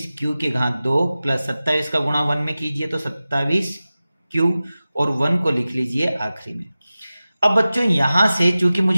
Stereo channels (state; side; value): inverted; both; correlation -0.96